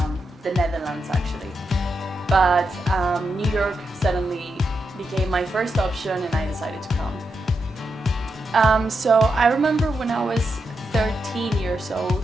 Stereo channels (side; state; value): both; normal; correlation 0.85